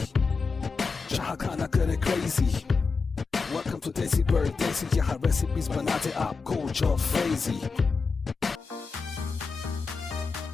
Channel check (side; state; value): right; quieter; 4.7 dB